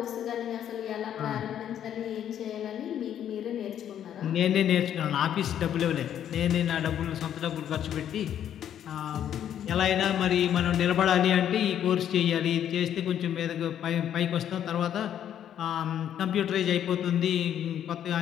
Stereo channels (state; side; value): quieter; right; 10.0 dB